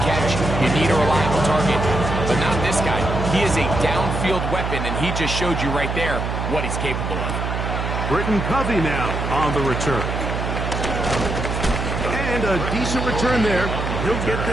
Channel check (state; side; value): noise; right; hum, 3 dB below the sound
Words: catch, you need a reliable target, but not this guy. He is a downfield weapon, and he just showed you right there what he's capable of. Britton Covey now on the return. And a decent return there. He'll get